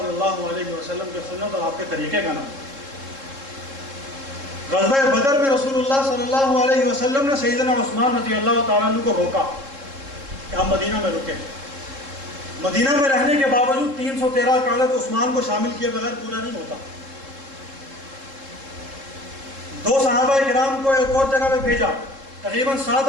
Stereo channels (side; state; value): left; late; 3.7 ms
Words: اللہ علیہ وسلم کے سنت اور آپ کے طریقے کا نام۔ غزوہ بدر میں رسول اللہ صلی اللہ علیہ وسلم نے سیدنا عثمان رضی اللہ تعالیٰ عنہ کو روکا کہ ہم مدینہ میں رکیں۔ مدینہ میں رہنے کے باوجود 313 کا عدد عثمان کو شامل کیے بغیر پورا نہیں ہوتا۔ 2 صحابہ کرام کو ایک اور جگہ پہ بھیجا، تقریباً 7